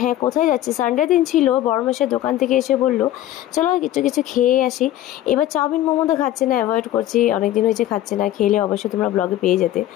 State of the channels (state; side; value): quieter; right; 13.5 dB